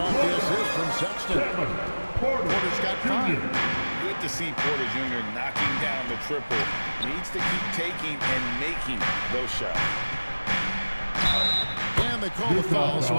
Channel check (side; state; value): both; inverted; correlation -1.00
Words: the assist from Sexton. Porter's got 5. Good to see Porter Jr. knocking down the triple. Needs to keep taking and making those shots. And they call the foul, so